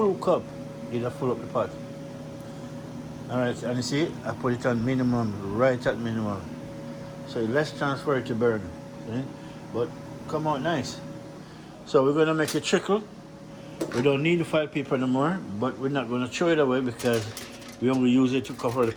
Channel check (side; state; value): both; identical; correlation 1.00